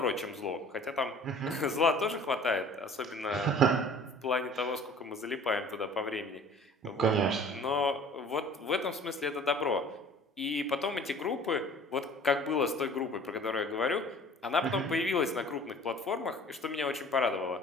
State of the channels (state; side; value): normal; both; correlation 0.48